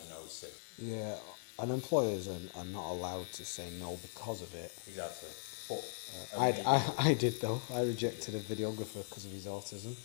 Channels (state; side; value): silent; right; digital silence